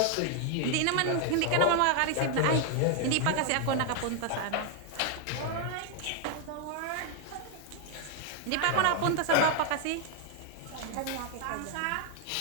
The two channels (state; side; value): different; both; correlation 0.00